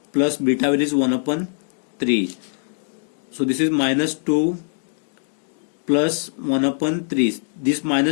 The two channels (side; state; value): right; silent; digital silence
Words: plus beta value is 1 upon 3. So this is minus 2 plus 1 upon 3. This